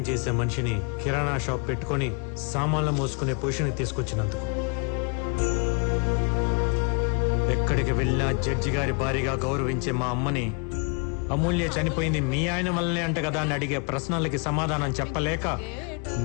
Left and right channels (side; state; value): right; quieter; 36.1 dB